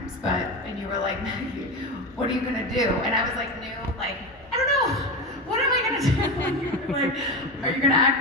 and you were like, Maggie, what are you gonna do? And I was like, I don't know, what am I gonna do? You were like, are you gonna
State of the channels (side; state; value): both; normal; correlation 0.21